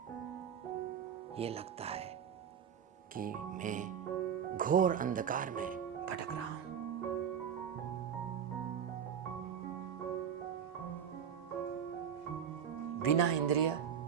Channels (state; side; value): quieter; left; 8.2 dB